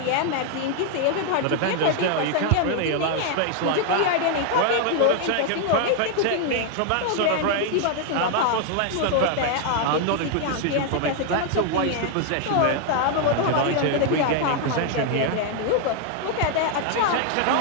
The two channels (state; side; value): different; both; correlation 0.00